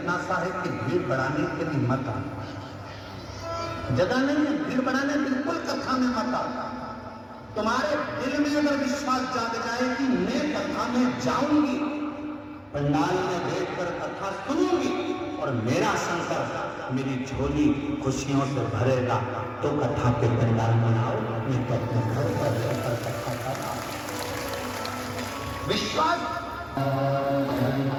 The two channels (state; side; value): identical; both; correlation 1.00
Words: सा है कि भीड़ बढ़ाने के लिए मत आना। जगह नहीं है भीड़ बढ़ाने, बिल्कुल कथा में मत आना। तुम्हारे दिल में अगर विश्वास जाग जाए कि मैं कथा में जाऊंगी, पंडाल में बैठकर कथा सुनूंगी और मेरा शंकर मेरी झोली खुशियों से भरेगा, तो कथा के पंडाल में आओ। मैं तो अपने घर पर रहकर कथा कर रहा हूं। विश्वास